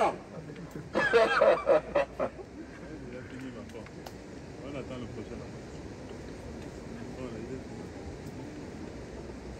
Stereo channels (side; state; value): both; identical; correlation 1.00